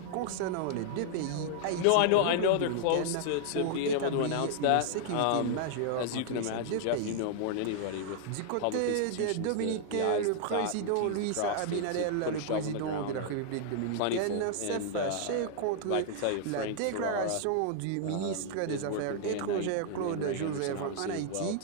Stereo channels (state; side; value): different; both; correlation -0.01